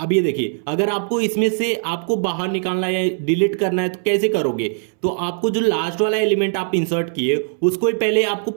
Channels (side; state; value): left; silent; 66 dB below the other